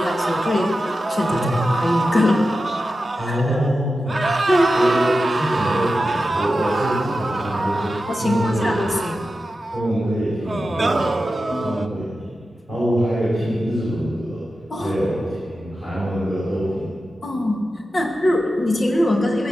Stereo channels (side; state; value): both; normal; correlation 0.92